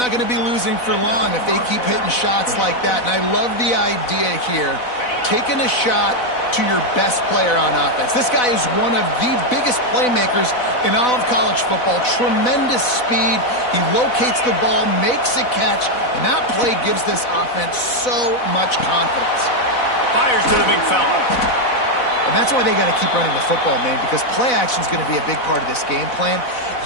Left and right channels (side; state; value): right; late; 4.0 ms